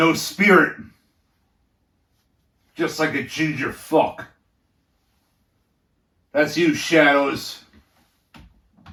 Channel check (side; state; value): both; identical; correlation 1.00